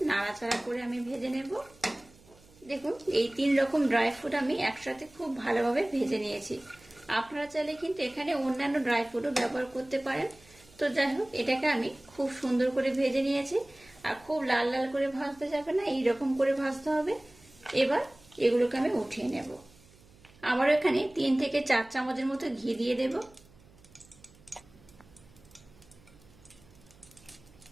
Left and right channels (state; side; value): noise; right; hum, 26 dB below the sound